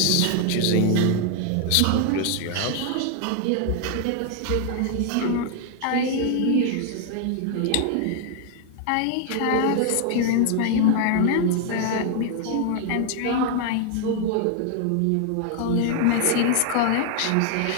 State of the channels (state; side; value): different; both; correlation 0.00